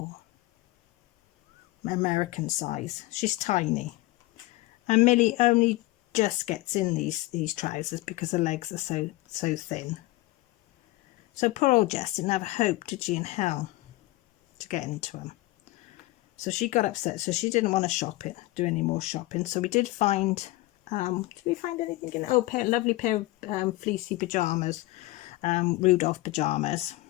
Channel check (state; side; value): quieter; right; 19.5 dB